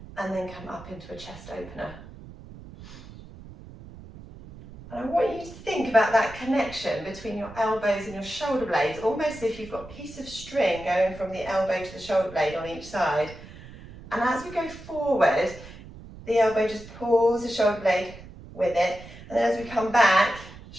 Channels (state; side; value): noise; right; rumble, 17 dB below the sound